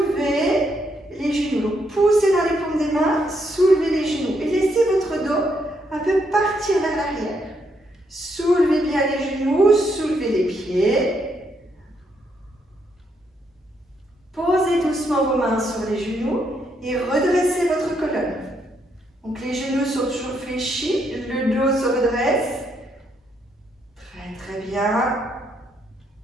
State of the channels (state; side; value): normal; both; correlation 0.76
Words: les genoux. Donc, poussez dans les paumes des mains, soulevez les genoux et laissez votre dos un peu partir vers l'arrière. Soulevez bien les genoux, soulevez les pieds. Posez doucement vos mains sur les genoux et redressez votre colonne. Donc les genoux sont toujours fléchis, le dos se redresse. Très très bien.